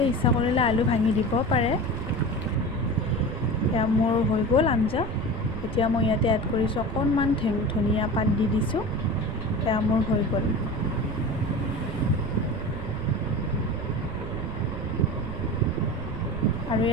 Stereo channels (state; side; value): noise; right; rumble, 7 dB below the sound